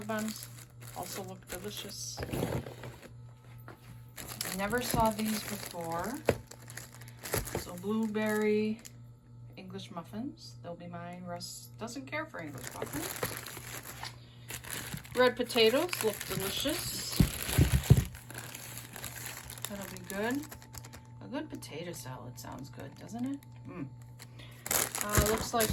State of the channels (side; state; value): both; identical; correlation 1.00